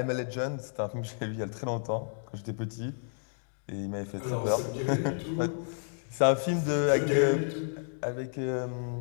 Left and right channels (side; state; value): right; silent; digital silence